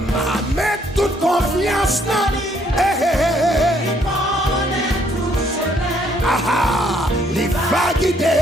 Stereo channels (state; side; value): normal; both; correlation 0.67